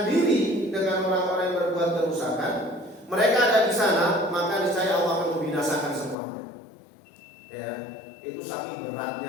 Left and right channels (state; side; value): drops out; right; at 6.2 s